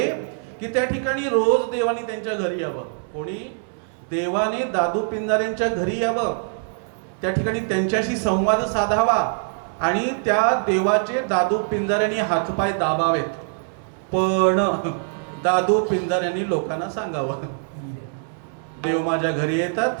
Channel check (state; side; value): silent; left; 63 dB below the other